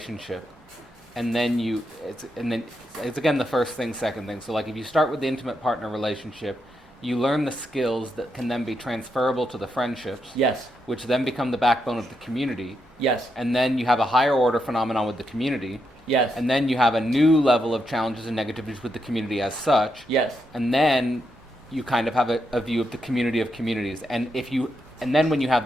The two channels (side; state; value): both; normal; correlation 0.82